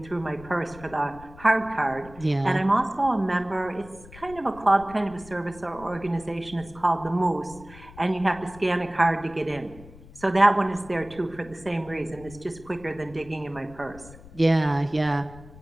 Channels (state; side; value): noise; left; rumble, 19 dB below the sound